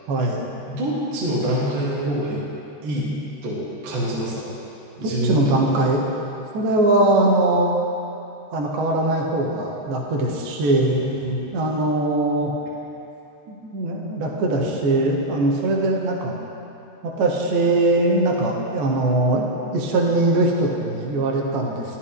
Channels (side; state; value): left; late; 14 ms